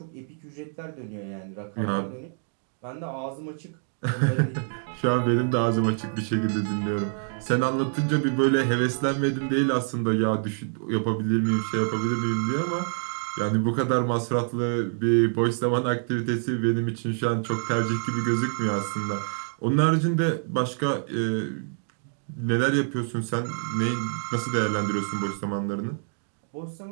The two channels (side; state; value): left; silent; digital silence